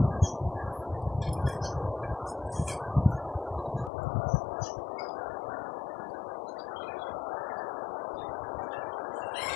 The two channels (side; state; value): right; drops out; at 3.9 s